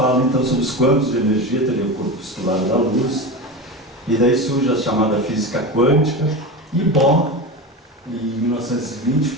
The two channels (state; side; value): normal; both; correlation 0.24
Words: então sobre os quântumos de energia, teria o corpuscular da luz, e daí surge a chamada física quântica, e Bohr, em 1920,